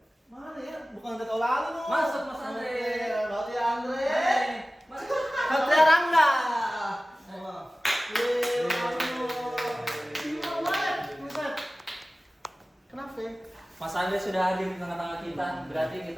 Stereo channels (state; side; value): normal; both; correlation 0.97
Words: Mana ya? Bukan Andre Taulani lu. Masuk, Mas Andre. Berarti Andre. Hai, Mas. Satria Rangga. Kenapa? Mas Andre sudah hadir di tengah-tengah kita, berarti